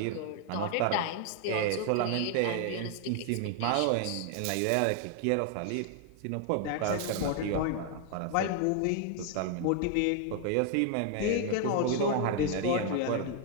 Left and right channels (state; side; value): different; both; correlation 0.00